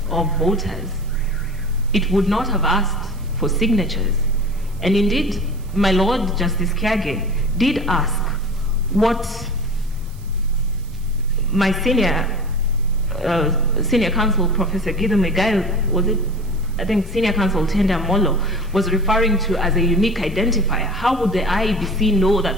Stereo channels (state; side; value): noise; right; hiss, 26 dB below the sound